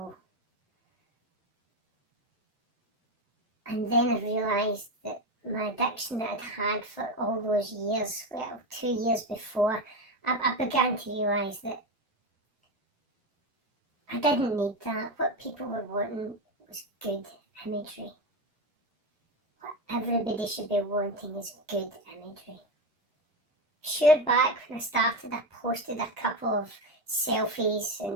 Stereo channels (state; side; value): normal; both; correlation 0.16